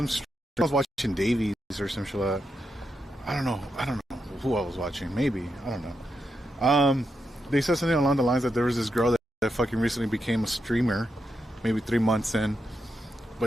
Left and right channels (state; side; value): normal; both; correlation 0.85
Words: was watching Davies or some shit like that. I don't know who I was watching. Maybe, I don't know. They said something along the lines that there was this girl that fucking recently became a streamer, maybe 3 months in,